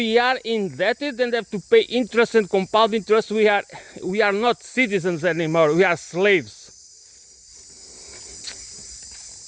are indebted and have to pay interest and compound interest, we are not citizens anymore, we are slaves.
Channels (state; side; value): identical; both; correlation 1.00